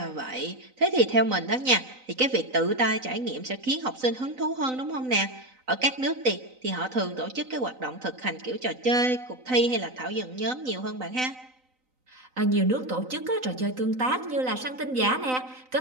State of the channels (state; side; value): late; left; 3.9 ms